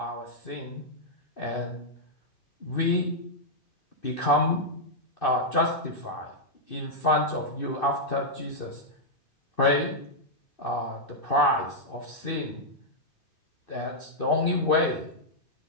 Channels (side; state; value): right; late; 2.6 ms